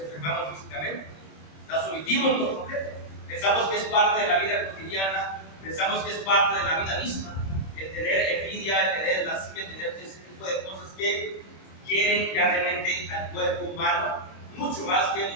físicamente. Las omitimos por completo. Pensamos que es parte de la vida cotidiana, pensamos que es parte de la vida misma, el tener envidia, el tener lascivia, el tener ese tipo de cosas que quieren grandemente al cuerpo humano, mucho más que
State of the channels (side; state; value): right; late; 26 ms